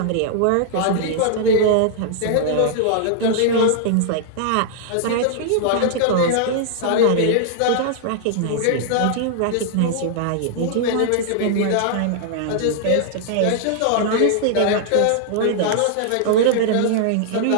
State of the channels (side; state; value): both; different; correlation -0.01